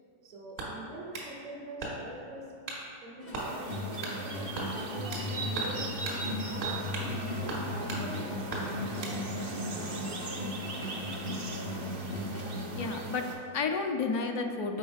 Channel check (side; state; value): right; late; 2.3 ms